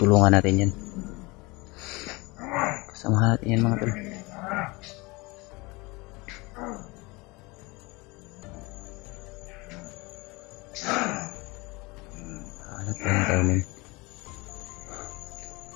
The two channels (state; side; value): quieter; right; 24.7 dB